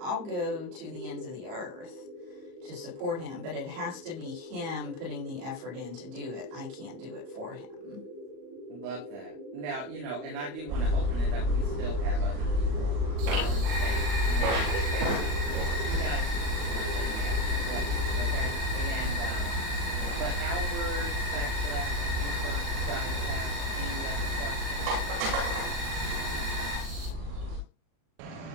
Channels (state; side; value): late; left; 40 ms